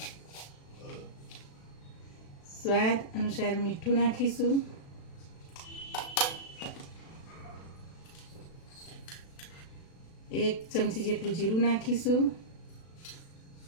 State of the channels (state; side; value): late; right; 36 ms